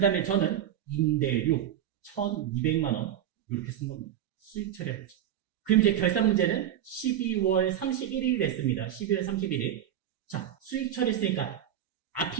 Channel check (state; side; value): quieter; left; 10.6 dB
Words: 다음에 저는 임대료 1200만원 이렇게 쓴 겁니다. 수익 처리해보죠. 그럼 이제 결산 문제는 12월 31일이 됐습니다. 12월 31일. 자, 수익 처리했으니까